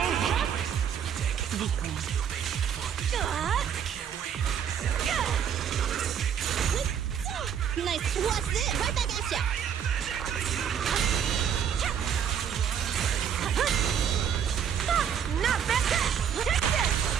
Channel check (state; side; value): quieter; left; 8.4 dB